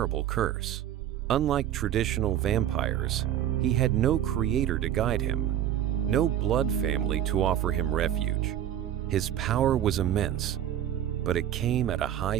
curse. Unlike traditional vampires, he had no creator to guide him, no blood family to offer him refuge. His power was immense, but it came at a high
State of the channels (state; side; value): quieter; left; 11.3 dB